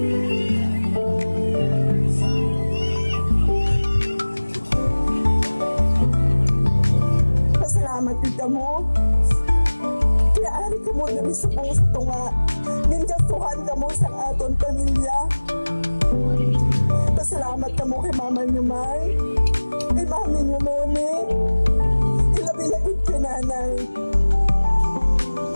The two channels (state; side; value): inverted; both; correlation -1.00